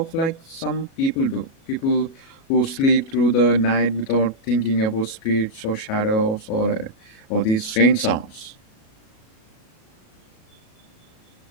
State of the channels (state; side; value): late; right; 37 ms